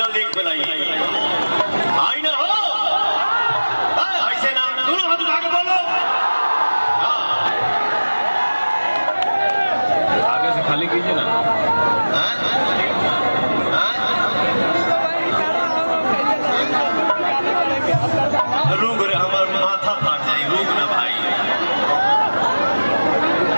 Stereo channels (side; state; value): both; inverted; correlation -1.00